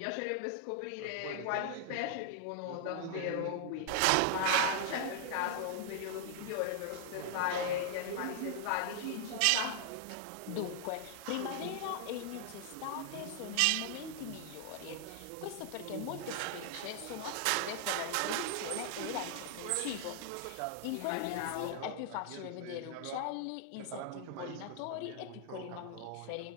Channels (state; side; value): different; both; correlation 0.00